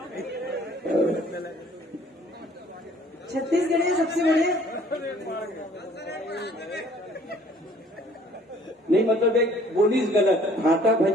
छत्तीसगढ़ियाँ सबसे बढ़िया नहीं, मतलब एक बोलीस गलत। भाटा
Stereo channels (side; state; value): both; normal; correlation 0.56